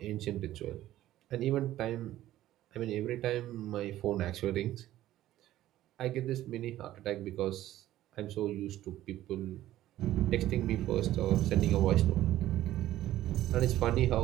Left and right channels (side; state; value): left; quieter; 14.1 dB